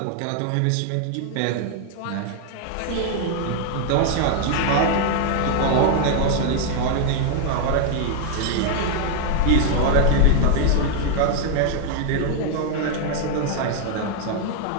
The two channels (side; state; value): both; different; correlation 0.00